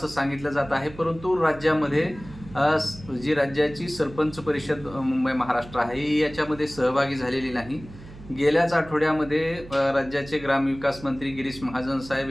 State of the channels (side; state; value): right; noise; hum, 17 dB below the sound